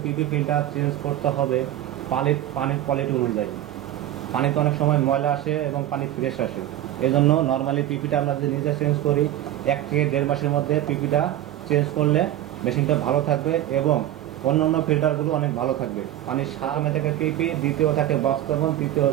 PP filter change করতে হবে পানির কোয়ালিটি অনুযায়ী। পানিতে অনেক সময় ময়লা আসে এবং পানি ফ্রেশ আসে, এই জন্য নর্মালি পিপিটা আমরা যদি নিজে চেঞ্জ করি 1 থেকে 1.5 মাসের মধ্যে পিপিটা চেঞ্জ করলে মেশিনটা ভালো থাকবে এবং অন্যান্য ফিল্টারগুলো অনেক ভালো থাকবে। পানির সামনে থেকে পিপি, দ্বিতীয় থাকে বক্স কার্বন, তৃতীয়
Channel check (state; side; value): quieter; left; 13.0 dB